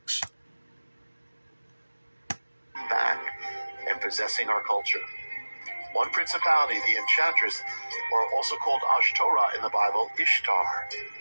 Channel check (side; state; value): both; inverted; correlation -1.00